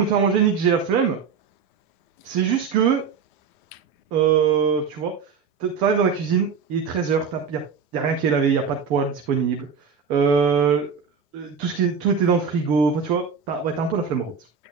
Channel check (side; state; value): left; quieter; 6.0 dB